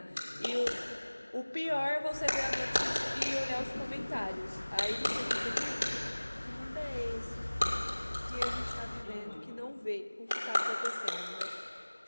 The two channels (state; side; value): inverted; both; correlation -1.00